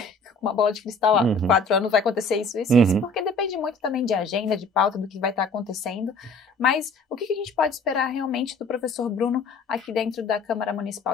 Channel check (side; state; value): right; quieter; 3.1 dB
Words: uma bola de cristal, 4 anos vai acontecer isso, porque depende muito também de agenda, de pauta, do que vai estar acontecendo. Mas o que a gente pode esperar realmente do professor Bruno aqui dentro da Câmara